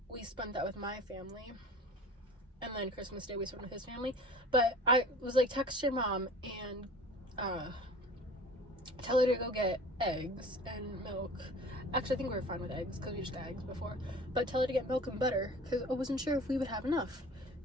we spent that with my family, and then Christmas Day we spent with his family. But I was like, text your mom and tell her to go get eggs and milk. Actually, I think we were fine with eggs because we just got eggs before. But tell her to get milk and butter because I wasn't sure if we would have enough.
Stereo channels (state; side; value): normal; both; correlation 0.42